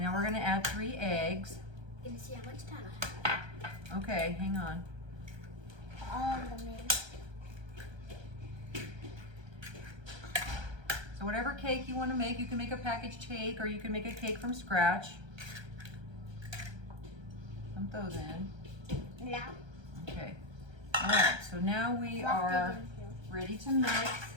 now we're gonna add 3 eggs. Gonna see how much time I have. Okay, hang on. All of them in. So whatever cake you want to make, you can make a packaged cake or you can make a cake from scratch. Dump those in. Yeah. Okay. All right, so now we are ready to mix.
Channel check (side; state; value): left; late; 1.3 ms